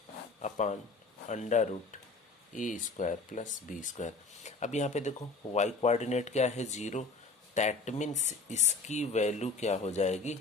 upon under root A square plus B square. अब यहाँ पे देखो y कोऑर्डिनेट क्या है 0, दैट मीन्स इसकी वैल्यू क्या हो जाएगी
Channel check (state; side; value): quieter; right; 3.7 dB